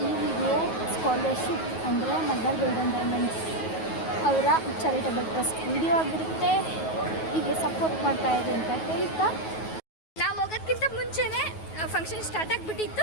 ಈ ವಿಡಿಯೋ ಸ್ಕಾಲರ್ಶಿಪ್ ಅಂದರೆ ಮಲಬಾರ್ ಗೋಲ್ಡನ್ ಡೈಮಂಡ್ಸ್ ಅವರ ಚಾರಿಟಬಲ್ ಟ್ರಸ್ಟ್ ವಿಡಿಯೋ ಆಗಿರುತ್ತೆ. ಹೀಗೆ ಸಪೋರ್ಟ್ ಮಾಡ್ತಾಯಿದೆ ಅಂತ ಹೇಳ್ತಾ ನಾವು ಹೋಗೋದಕ್ಕಿಂತ ಮುಂಚೆನೇ ಫಂಕ್ಷನ್ ಸ್ಟಾರ್ಟ್ ಆಗಿಬಿಟ್ಟಿತ್ತು.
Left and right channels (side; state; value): right; late; 9.3 ms